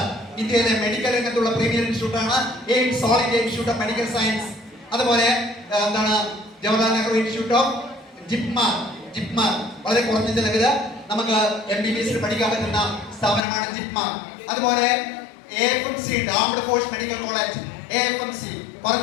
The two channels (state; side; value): drops out; right; at 13.4 s